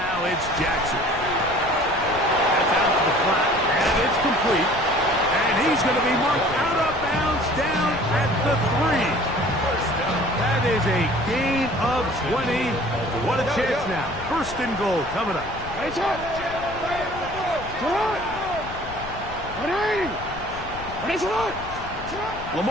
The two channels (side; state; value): left; noise; rumble, 13 dB below the sound